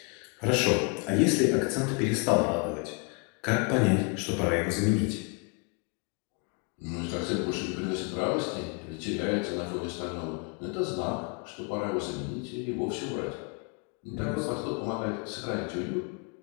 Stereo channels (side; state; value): right; quieter; 33.6 dB